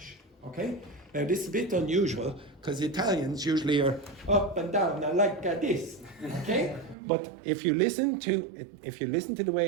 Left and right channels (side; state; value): left; drops out; at 7.0 s